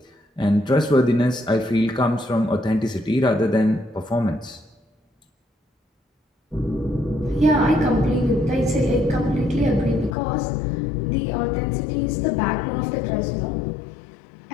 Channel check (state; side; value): drops out; right; at 10.2 s